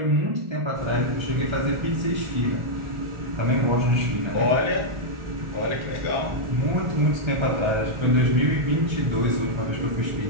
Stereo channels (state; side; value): late; left; 1.4 ms